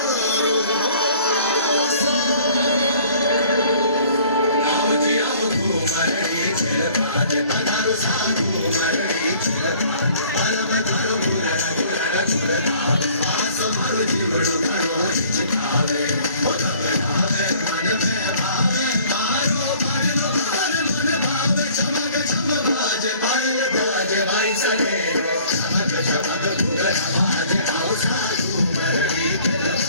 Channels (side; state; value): both; inverted; correlation -0.53